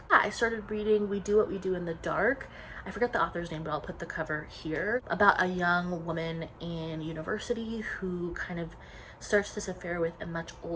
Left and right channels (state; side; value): identical; both; correlation 1.00